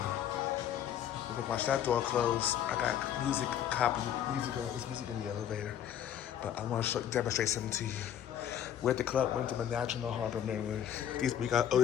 We're gonna watch that door close. I got music, it's music in the elevator. But I want to demonstrate something to you. We're at the club Wyndham in National Harbor, Maryland. We got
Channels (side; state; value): right; quieter; 10.1 dB